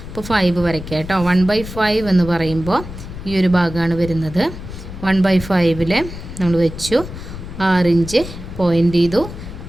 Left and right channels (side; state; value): left; noise; rumble, 11 dB below the sound